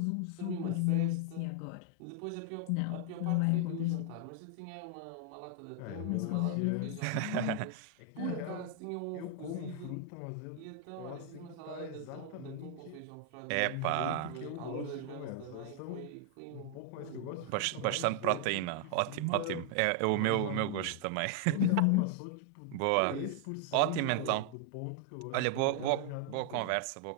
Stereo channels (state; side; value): different; both; correlation 0.00